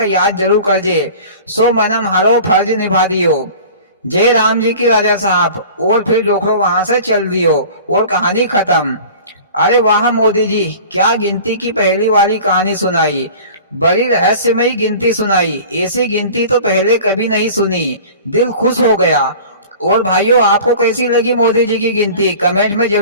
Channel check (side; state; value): both; inverted; correlation -0.41